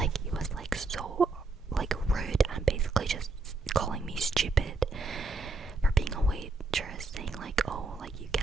he was like so like rude and basically just calling me stupid for being a waitress, saying like, oh, like you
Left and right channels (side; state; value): left; quieter; 3.7 dB